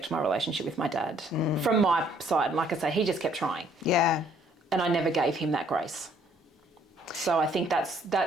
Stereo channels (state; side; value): normal; both; correlation 0.63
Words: my relationship with my dad. From my side, and like I say, he just kept trying. Yeah. And I never gave him that grace. So I think